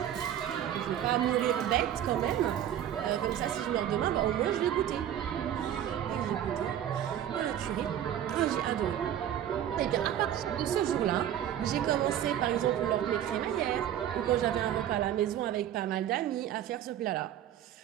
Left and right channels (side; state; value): left; quieter; 10.7 dB